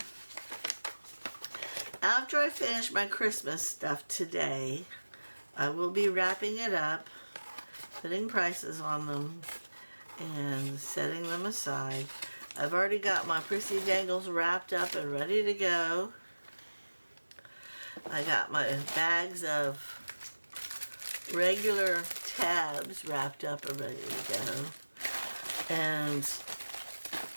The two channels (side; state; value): both; inverted; correlation -1.00